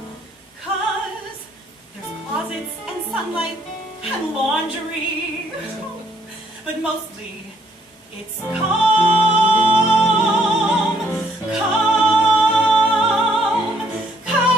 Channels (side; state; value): both; normal; correlation 0.67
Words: 'cause there's closets and sunlight and laundry. But mostly, it's calm, calm,